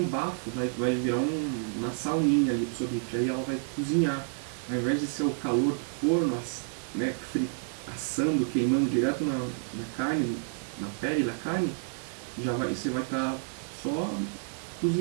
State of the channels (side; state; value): left; silent; digital silence